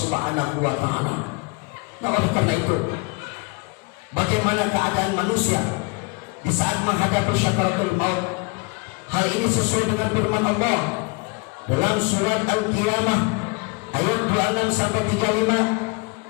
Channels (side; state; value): right; quieter; 29.0 dB